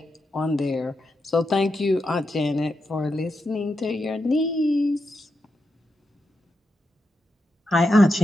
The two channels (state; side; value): normal; both; correlation 0.86